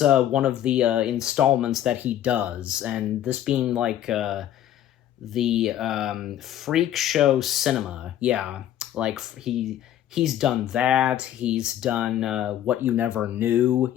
one of the installments that he does, and this being the Freak Show Cinema, yeah, he's done that, he's done What You Never Knew,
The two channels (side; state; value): right; quieter; 11.5 dB